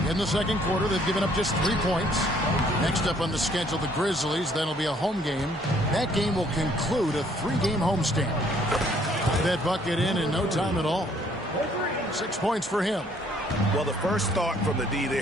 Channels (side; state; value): both; normal; correlation 0.63